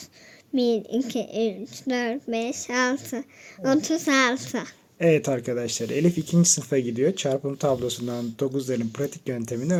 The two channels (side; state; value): both; identical; correlation 1.00